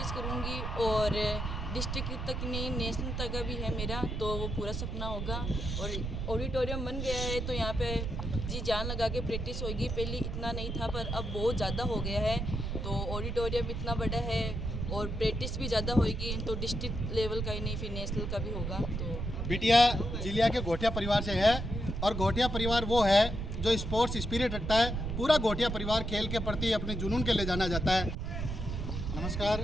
करूँगी और डिस्ट्रिक्ट तक नहीं, नेशनल तक भी है मेरा, तो वो पूरा सपना होगा। और ऑडिटोरियम बन गया है तो यहाँ पे जी जान लगा के प्रैक्टिस होगी। पहले इतना नहीं था पर अब बहुत ज़्यादा हो गया है। तो ऑडिटोरियम इतना बड़ा है और प्रैक्टिस भी ज़्यादा होगी, तो डिस्ट्रिक्ट लेवल का ही नहीं फिर नेशनल का भी होगा। तो बिटिया जिलिया के घोटिया परिवार से है और घोटिया परिवार वो है जो स्पोर्ट्स स्पिरिट रखता है। पूरा घोटिया परिवार खेल के प्रति अपने जुनून के ले जाना जाता है। नमस्कार,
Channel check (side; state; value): right; noise; rumble, 3 dB below the sound